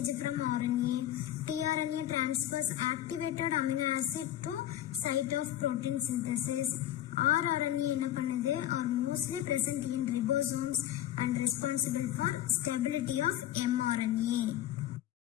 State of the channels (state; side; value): quieter; right; 12.6 dB